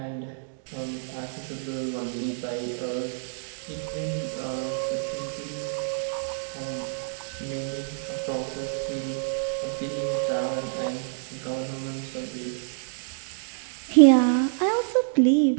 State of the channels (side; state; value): left; silent; digital silence